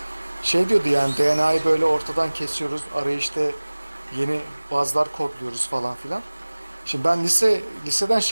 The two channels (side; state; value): both; inverted; correlation -1.00